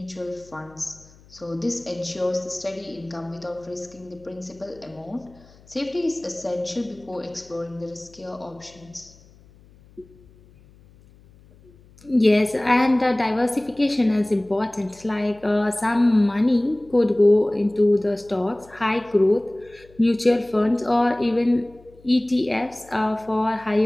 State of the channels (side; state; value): left; noise; hum, 26 dB below the sound